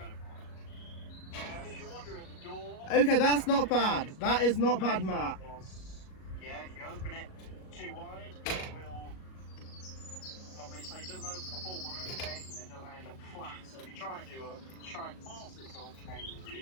for it. If you're wondering, the door... Okay, that's not bad. That is not bad, Matt. Yeah, if you open it too wide, it will... Obviously, it doesn't open the full 180, and it doesn't end up flat. So if you try and force it to 180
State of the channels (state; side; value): late; right; 38 ms